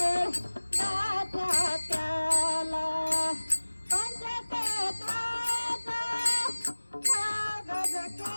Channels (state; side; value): inverted; both; correlation -1.00